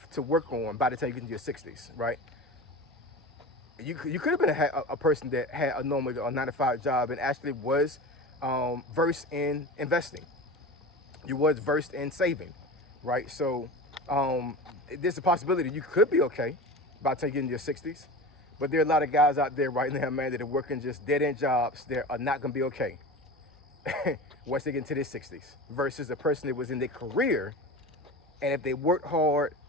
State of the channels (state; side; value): normal; both; correlation 0.31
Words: to work on by the time you get into your 60s, right? You could have been a person that had a normal 9-to-5 job and actually was versed in investing. You was versed in saving, right? So there's a possibility you could be okay by the time you get into your 60s. But there are a lot of guys out there right now, man, that are working just dead-end jobs that are not going to be okay once they get into their 60s, versus a person that was in their career, and if they worked hard